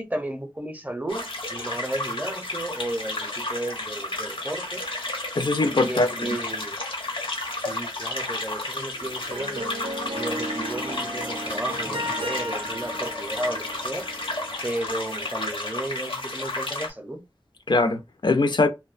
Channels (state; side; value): normal; both; correlation 0.47